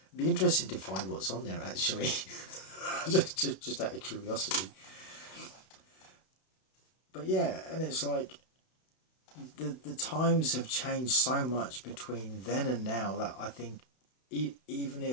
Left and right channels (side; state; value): right; late; 32 ms